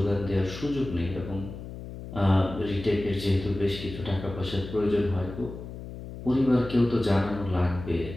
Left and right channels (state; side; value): noise; left; hum, 11 dB below the sound